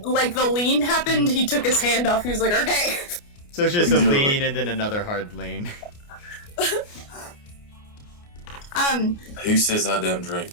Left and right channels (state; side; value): late; right; 29 ms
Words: the lean happened, he took his hand off. He was like, okay. So it's just a lean and then another hard lean. Who says I don't drink?